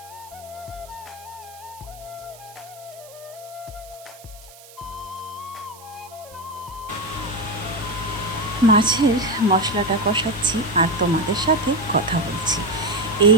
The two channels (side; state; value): right; noise; hiss, 21 dB below the sound